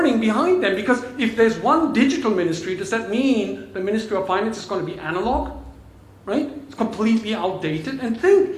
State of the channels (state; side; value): identical; both; correlation 1.00